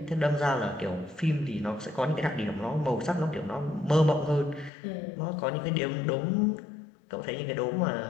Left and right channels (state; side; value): drops out; right; at 4.7 s